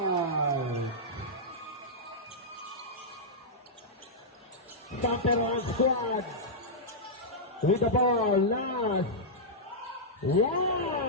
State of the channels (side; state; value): both; normal; correlation -0.10